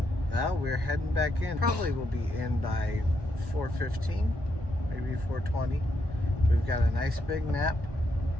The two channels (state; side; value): late; left; 1.1 ms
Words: Well, we're heading back in. Probably will be in by 4:15, maybe 4:20. We've got a nice big nap.